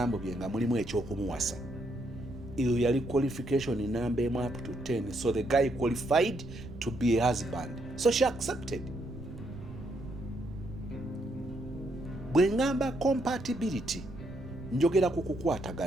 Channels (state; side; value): noise; right; rumble, 14 dB below the sound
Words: bye nga mulimu eky'okumuwasa, eyo yali qualification number up to 10, so the guy qualified to be a husband, so she accepted. Bwe ngamba compatibility njogera ku